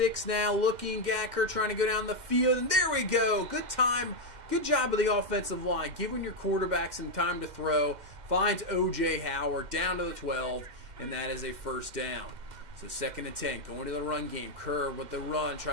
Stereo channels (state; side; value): late; left; 2.1 ms